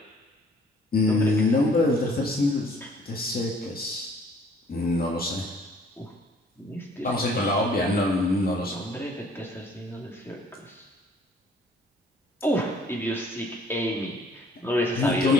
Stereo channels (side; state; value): both; normal; correlation 0.57